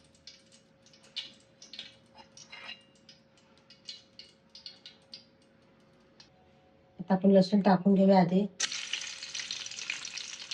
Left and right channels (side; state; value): both; identical; correlation 1.00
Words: आता आपण लसूण टाकून घेऊया आधी.